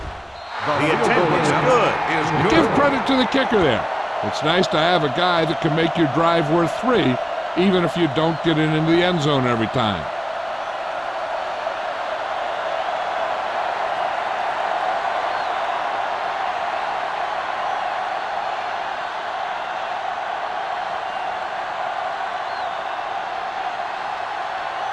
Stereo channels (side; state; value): both; identical; correlation 1.00